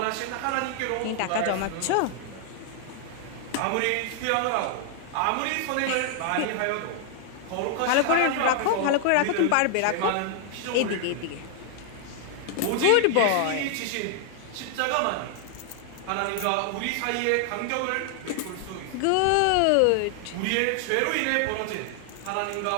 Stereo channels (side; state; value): both; different; correlation 0.00